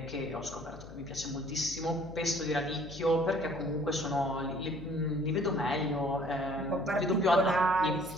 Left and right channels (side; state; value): left; noise; hum, 16 dB below the sound